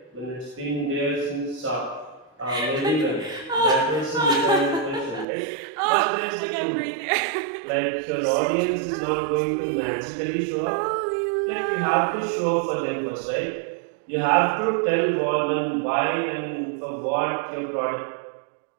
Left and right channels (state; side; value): drops out; left; at 5.2 s